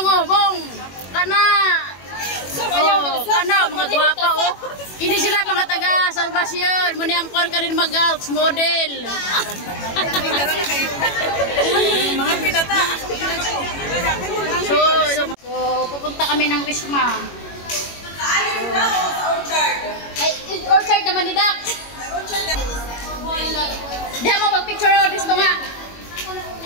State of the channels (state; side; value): late; right; 21 ms